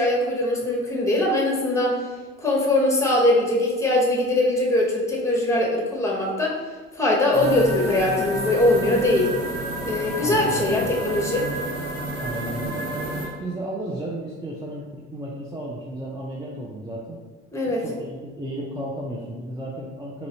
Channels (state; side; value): normal; both; correlation 0.41